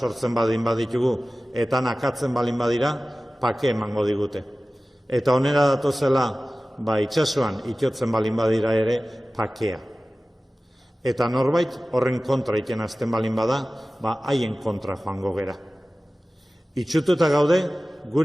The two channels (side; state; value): both; normal; correlation 0.97